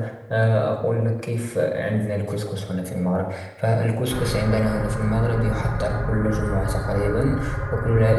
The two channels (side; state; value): both; identical; correlation 1.00